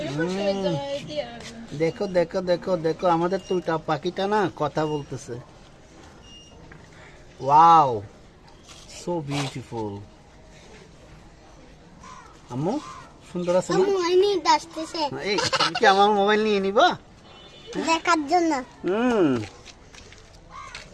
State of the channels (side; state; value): both; identical; correlation 1.00